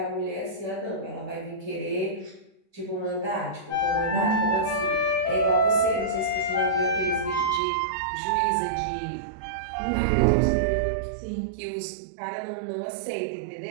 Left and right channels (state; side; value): drops out; left; at 7.6 s